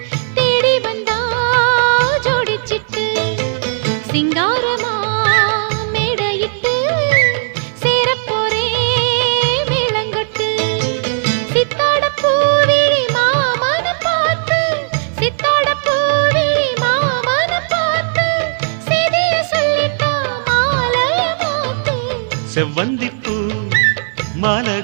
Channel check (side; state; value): left; silent; digital silence